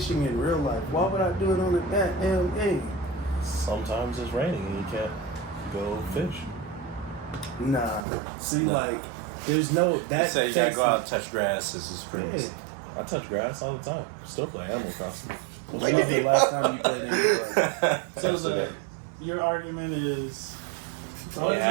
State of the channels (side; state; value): left; drops out; at 8.1 s